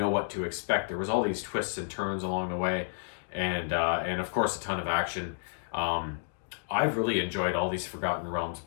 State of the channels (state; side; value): silent; right; digital silence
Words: what to expect. There was all these twists and turns along the way, and of course a ton of action. I've really enjoyed all these Forgotten Realms